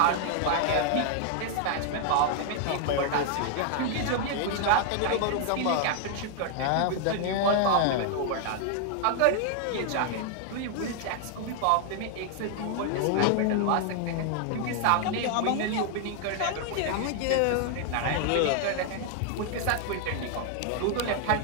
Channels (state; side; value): different; both; correlation 0.00